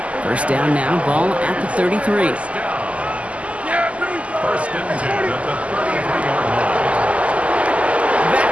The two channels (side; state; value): left; late; 0.064 ms